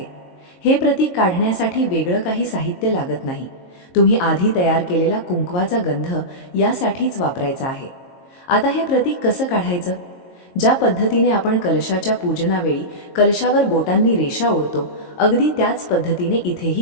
हे प्रतीक काढण्यासाठी वेगळं काही साहित्य लागत नाही. तुम्ही आधी तयार केलेला कुंकवाचा गंध यासाठीच वापरायचा आहे. आता हे प्रतीक कसं काढायचं? ज्या पद्धतीने आपण कलशाच्या पूजनावेळी कलशावर बोटांनी रेषा ओढतो, अगदी त्याच पद्धतीने इथेही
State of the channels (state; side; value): late; right; 22 ms